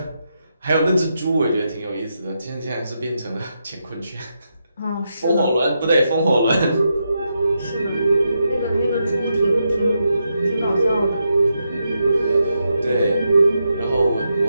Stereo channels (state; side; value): inverted; both; correlation -0.84